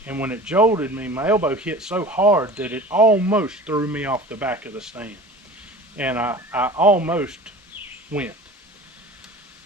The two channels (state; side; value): normal; both; correlation 0.39